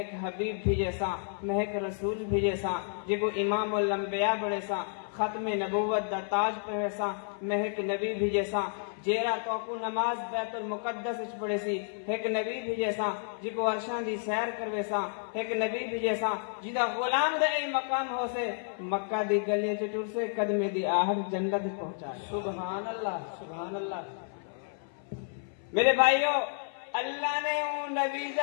حبیب بھیجے سا، میں ایک رسول بھیجے سا، جے کو امام الانبیاء بڑے سا، ختم نبوت دا تاج پہنے سا، میں ایک نبی بھیجے سا، جیرا تو کو نماز بیت المقدس اچ پڑھے سی، ایک نبی بھیجے سا، جی کو عرشان دی سیر کروے سا، ایک نبی بھیجے سا، جیدہ غلام دے اے مقام ہو سے، مکہ دی گلیاں چٹور سے قدمے دی آہر جنت پہنچا۔ سبحان اللہ، سبحان اللہ۔ میرے بھائیو، اللہ نے اون نبی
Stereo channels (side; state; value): right; silent; 57 dB below the other